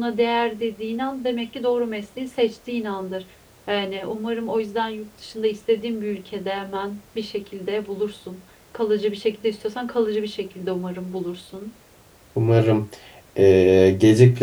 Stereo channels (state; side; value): identical; both; correlation 1.00